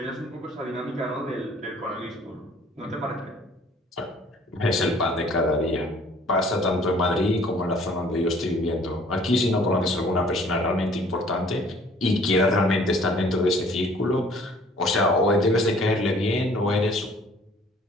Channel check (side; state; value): both; normal; correlation 0.55